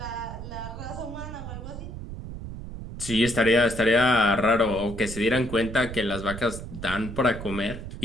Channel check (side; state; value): right; noise; rumble, 10 dB below the sound